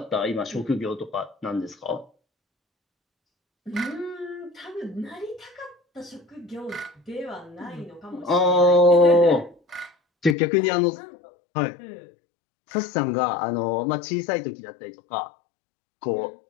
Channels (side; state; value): right; drops out; at 10.4 s